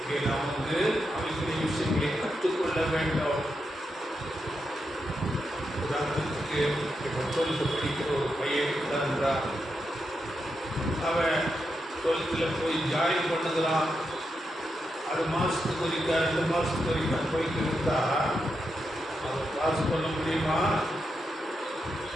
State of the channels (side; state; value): both; normal; correlation 0.85